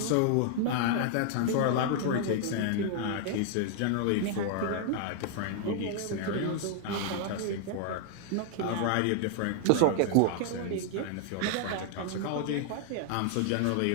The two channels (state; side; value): different; both; correlation 0.00